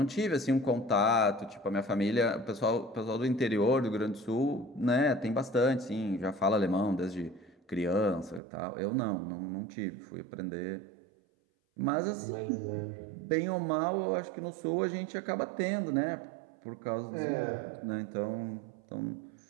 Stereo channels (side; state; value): left; drops out; at 8.4 s